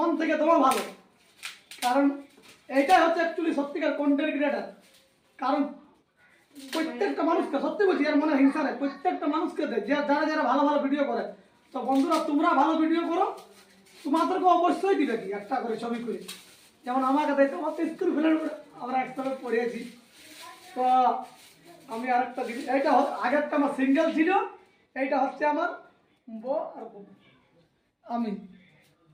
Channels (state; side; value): identical; both; correlation 1.00